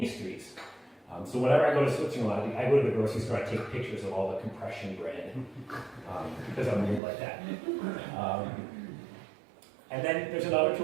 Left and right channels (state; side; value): drops out; left; at 7.0 s